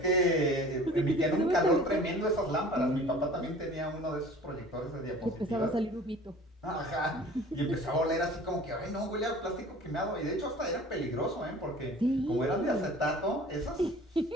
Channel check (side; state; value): both; normal; correlation 0.45